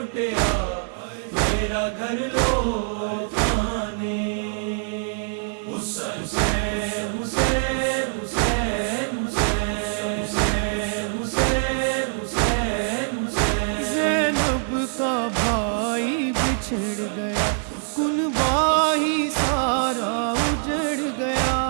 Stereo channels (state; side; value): silent; left; digital silence